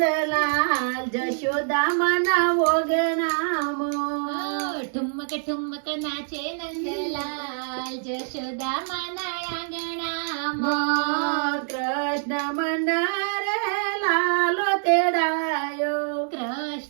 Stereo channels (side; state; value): left; silent; 62 dB below the other